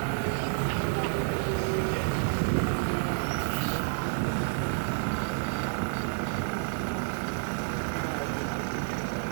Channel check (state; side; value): silent; left; digital silence